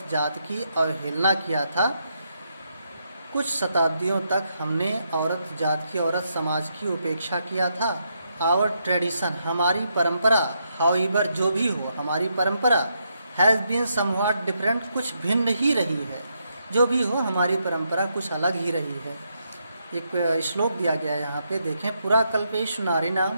जात की अवहेलना किया था। कुछ शताब्दियों तक हमने औरत जात की, औरत समाज की उपेक्षा किया था। आवर ट्रेडिशन, हमारी परंपरा, हाउएवर, जो भी हो, हमारी परंपरा, हैज़ बीन समव्हाट डिफरेंट, कुछ भिन्न ही रही है, जो भी हो हमारी परंपरा कुछ अलग ही रही है। एक श्लोक दिया गया है यहाँ पे, देखें। पुराकल्पेषु नारीणां,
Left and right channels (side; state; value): both; inverted; correlation -0.79